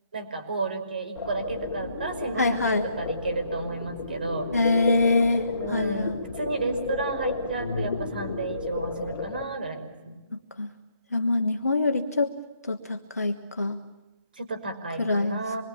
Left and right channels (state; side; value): inverted; both; correlation -0.71